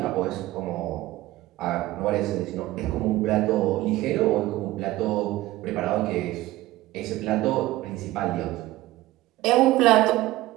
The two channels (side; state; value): left; quieter; 17.0 dB